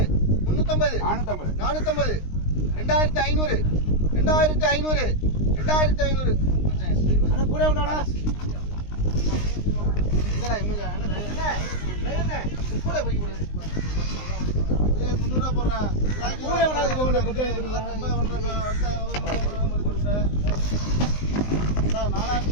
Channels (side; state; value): right; late; 19 ms